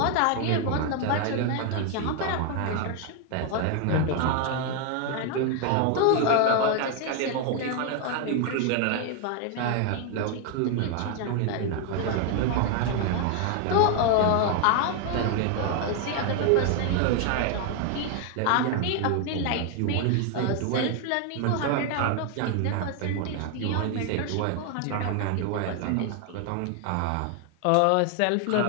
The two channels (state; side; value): different; both; correlation 0.01